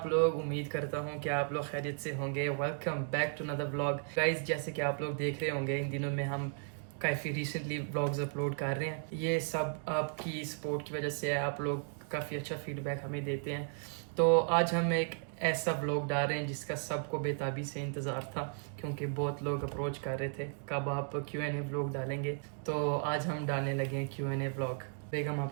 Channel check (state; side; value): silent; left; 54 dB below the other